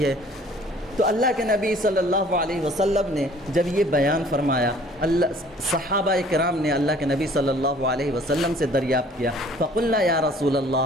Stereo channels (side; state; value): both; normal; correlation 0.54